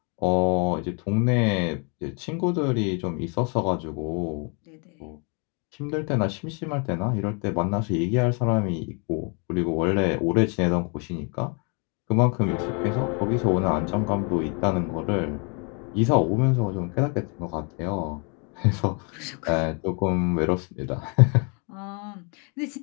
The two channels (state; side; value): quieter; right; 35.9 dB